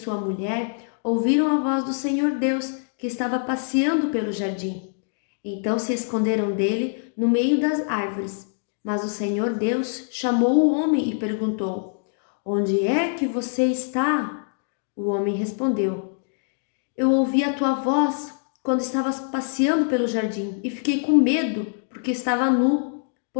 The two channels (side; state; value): right; silent; digital silence